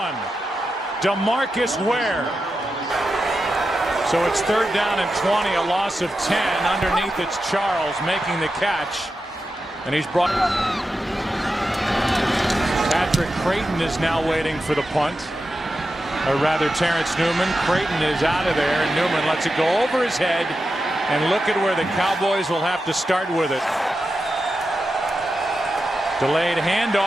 DeMarcus Ware. So it's 3rd down and 20, a loss of 10. Underneath it's Charles making the catch, and he's brought. Patrick Creighton is now waiting for the punt. Or rather, Terrence Newman. Creighton is out of there, and Newman lets it go over his head, and look at where the Cowboys will have to start with it. Delayed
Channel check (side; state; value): both; normal; correlation 0.90